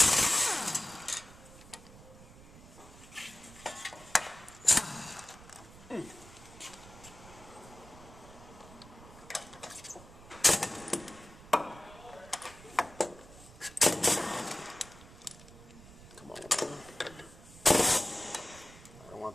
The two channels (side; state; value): right; noise; rumble, 19 dB below the sound